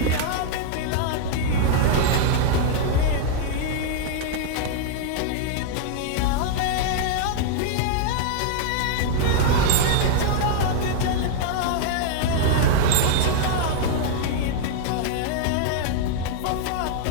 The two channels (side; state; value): both; different; correlation 0.00